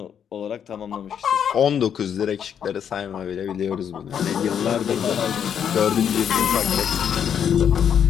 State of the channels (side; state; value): right; quieter; 8.3 dB